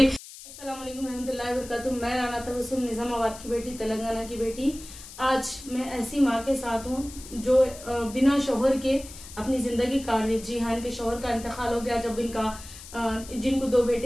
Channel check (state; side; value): noise; left; hiss, 15 dB below the sound